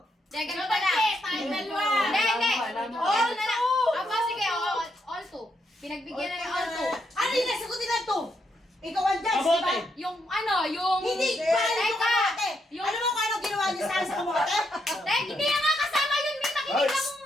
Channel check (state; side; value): normal; both; correlation 0.79